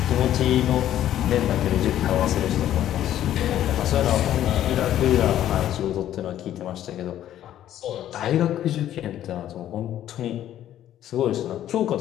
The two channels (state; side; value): quieter; right; 11.9 dB